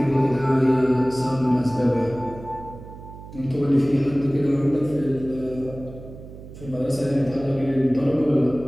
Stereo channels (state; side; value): noise; right; hum, 15 dB below the sound